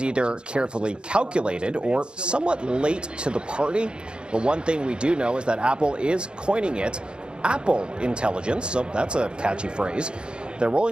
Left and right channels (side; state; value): left; late; 0.052 ms